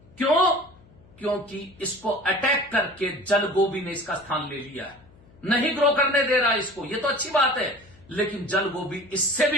क्यों? क्योंकि इसको अटैक करके जलगोभी ने इसका स्थान ले लिया है, नहीं ग्रो करने दे रहा इसको। ये तो अच्छी बात है, लेकिन जलगोभी इससे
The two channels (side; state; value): left; noise; hum, 27 dB below the sound